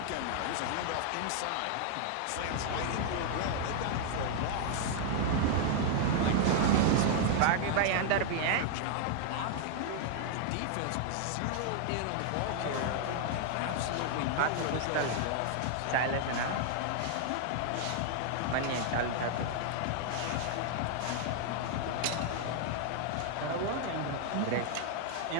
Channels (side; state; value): both; different; correlation 0.00